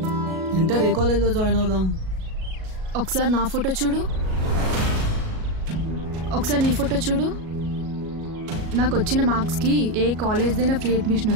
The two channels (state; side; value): late; left; 37 ms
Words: Inter ఏ కాలేజ్లో జాయిన్ అవుదాం? ఒకసారి నా ఫోటో చూడు, ఒకసారి నీ ఫోటో చూడు. నాకు వచ్చిన మార్క్స్కి ఏ కాలేజ్దైనా ఫ్రీ అడ్మిషన్